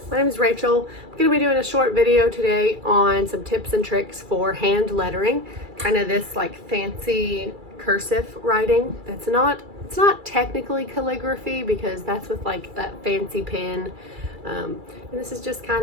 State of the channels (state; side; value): late; left; 2.3 ms